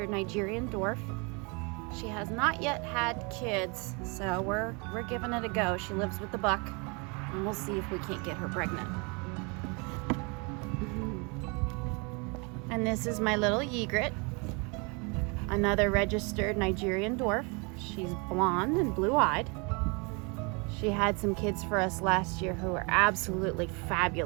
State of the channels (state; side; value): quieter; left; 31.3 dB